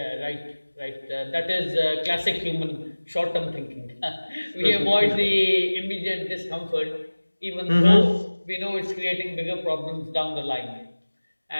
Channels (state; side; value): inverted; both; correlation -1.00